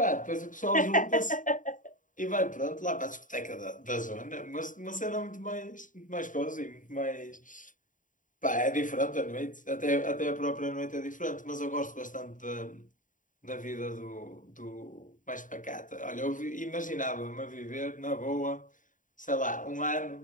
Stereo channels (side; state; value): right; late; 0.38 ms